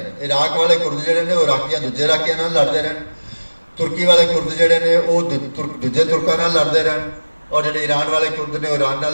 ਇਰਾਕ ਵਾਲੇ ਕੁਰਦ ਜਿਹੜੇ ਨੇ ਉਹ ਇਰਾਕੀਆਂ ਦੂਜੇ ਇਰਾਕੀਆਂ ਨਾਲ ਲੜਦੇ ਰਹਿਣ, ਤੁਰਕੀ ਵਾਲੇ ਕੁਰਦ ਜਿਹੜੇ ਨੇ ਉਹ ਦੂਜੇ ਤੁਰਕਾਂ ਨਾਲ ਲੜਦੇ ਰਹਿਣ, ਔਰ ਜਿਹੜੇ ਈਰਾਨ ਵਾਲੇ ਕੁਰਦ ਨੇ ਉਹ ਈਰਾਨ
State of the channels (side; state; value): both; inverted; correlation -1.00